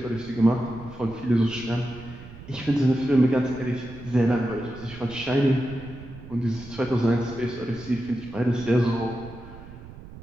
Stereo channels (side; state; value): right; noise; rumble, 16 dB below the sound